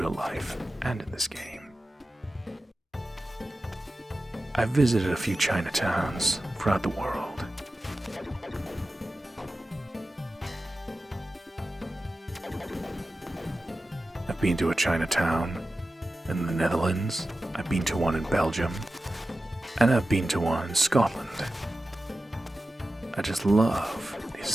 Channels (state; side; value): normal; both; correlation 0.93